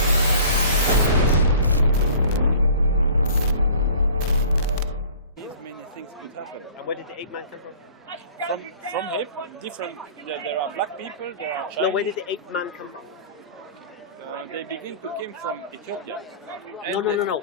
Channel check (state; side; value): inverted; both; correlation -0.45